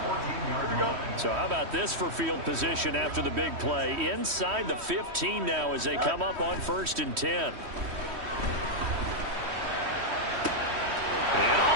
So how about this for field position after the big play? Inside the 15 now as they come up on 1st and 10. And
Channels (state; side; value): late; left; 3.1 ms